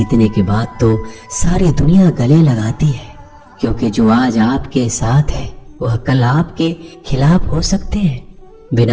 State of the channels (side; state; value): both; identical; correlation 1.00